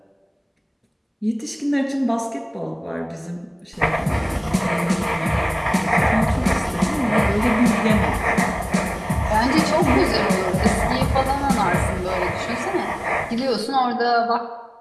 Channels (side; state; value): both; identical; correlation 1.00